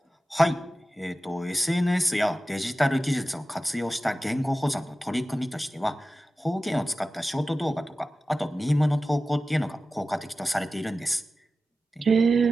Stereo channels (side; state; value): both; normal; correlation 0.95